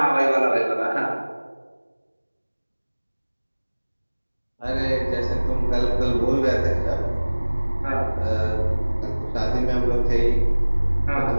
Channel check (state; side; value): inverted; both; correlation -1.00